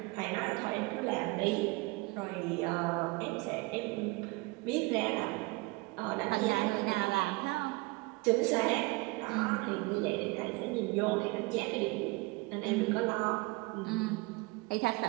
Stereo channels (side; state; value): left; quieter; 24.7 dB